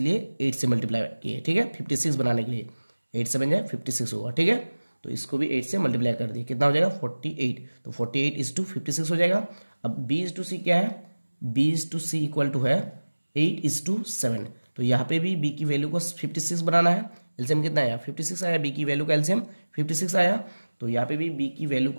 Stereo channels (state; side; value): inverted; both; correlation -1.00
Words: 8 से मल्टीप्लाई किए, ठीक है। 56 बनाने के लिए 8 7 जा 56 होगा, ठीक है। तो इसको भी 8 से मल्टीप्लाई कर दिए, कितना हो जाएगा 48, तो 48 इज टू 56 हो जाएगा। अब बी इज टू सी क्या है, B is to C equal to है 8 इज टू 7, तो यहाँ पे भी बी की वैल्यू को 56 बनाना है। एलसीएम कितना आया 56 आया, बी की वैल्यू का एलसीएम 56 आया, तो यहाँ पे भी बी की वैल्यू